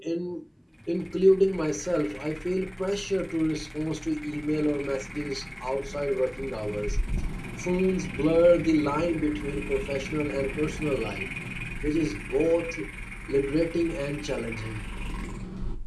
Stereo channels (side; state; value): both; identical; correlation 1.00